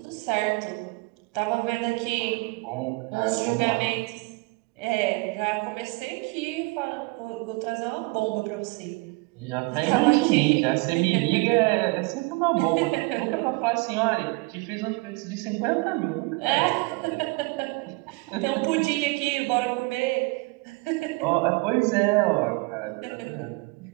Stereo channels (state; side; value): quieter; left; 26.6 dB